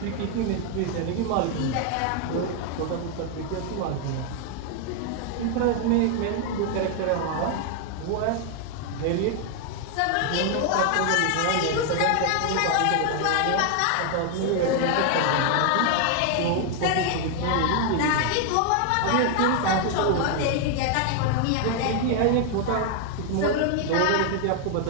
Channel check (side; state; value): both; different; correlation 0.00